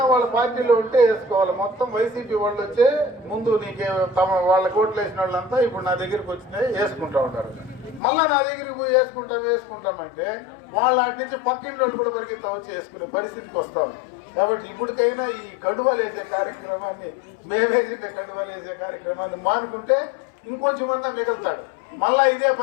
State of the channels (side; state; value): right; drops out; at 8.0 s